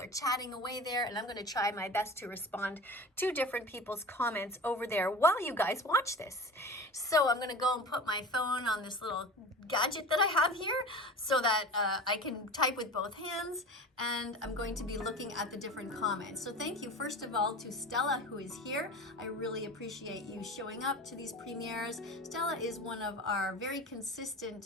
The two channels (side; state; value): both; normal; correlation 0.34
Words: chatting away there, and I'm going to try my best to respond to different people's comments over there while you guys watch this. So I'm going to go and put my phone on this little gadget that I have here so that I can type with both hands, and I'm going to be looking at the different comments. So thank you first of all to Stella, who is here. I really appreciate you showing up to these premieres. Stella is one of our very